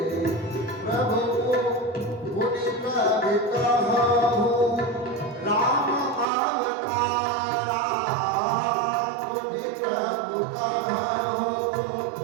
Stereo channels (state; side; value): drops out; left; at 6.2 s